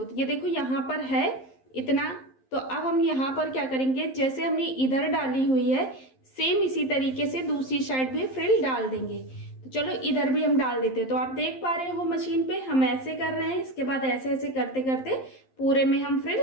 तो ये देखो, यहाँ पर है इतना। तो अब हम यहाँ पर क्या करेंगे, जैसे हमने इधर डाली हुई है, सेम इसी तरीके से दूसरी साइड भी फ्रिल डाल देंगे। तो चलो इधर भी हम डाल देते हैं। तो आप देख पा रहे हो मशीन पे हम ऐसे कर रहे हैं, इसके बाद ऐसे ऐसे करते करते पूरे में हम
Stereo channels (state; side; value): late; right; 11 ms